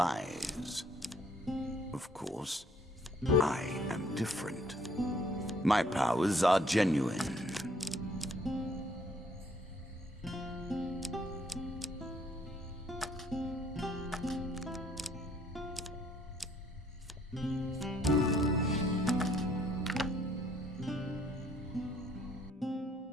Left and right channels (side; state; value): both; normal; correlation 0.63